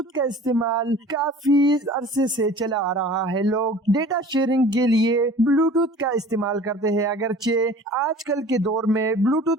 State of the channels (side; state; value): both; normal; correlation 0.45